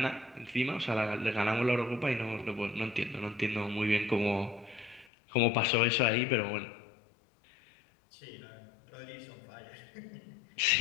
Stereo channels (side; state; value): right; drops out; at 5.1 s